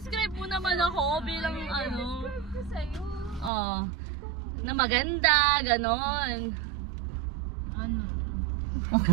mo naman ako bilang ano. Ito sa'yo. Oh, na maganda, ganon. Ano?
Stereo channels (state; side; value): drops out; left; at 3.5 s